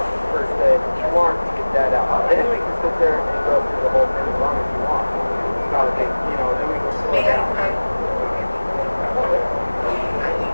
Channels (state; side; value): inverted; both; correlation -1.00